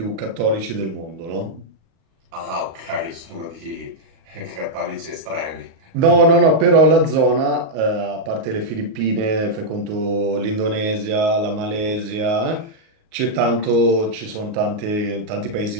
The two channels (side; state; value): left; late; 36 ms